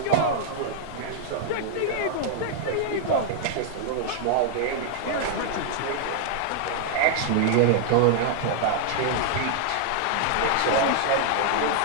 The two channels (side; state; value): both; different; correlation -0.01